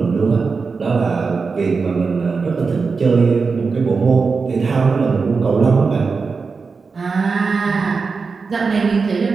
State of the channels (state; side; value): quieter; left; 4.8 dB